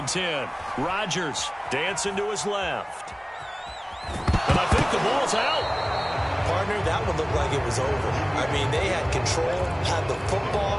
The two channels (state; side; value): identical; both; correlation 1.00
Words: 10. Rodgers dancing to his left. And I think the ball's out. Partner, that one looked like it was over. I mean, they had control, had the